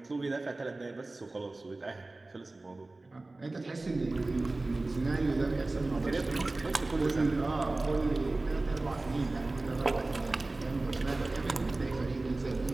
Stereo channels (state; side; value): quieter; left; 3.1 dB